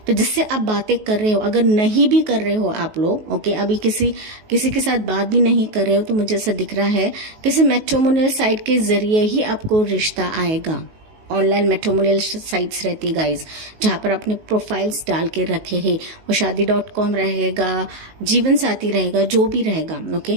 तो जिससे आप बातें कर रहे हो, अगर नहीं भी कर रहे हो आप लोग, ओके, अभी किसी के साथ बात भी नहीं कर रहे हो, तो मुझे ऐसा दिख रहा है किसी मैट्रिमोनियल साइट के जरिए ही आपको रिश्ता आएगा। ऑनलाइन मैट्रिमोनियल साइट्स रहती है गाइज, जहाँ पर आपने प्रोफाइल्स डाल के रखे हैं, वो शादी.com रहेगा, जीवन साथी रहेगा, जो भी रहेगा,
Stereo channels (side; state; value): left; late; 19 ms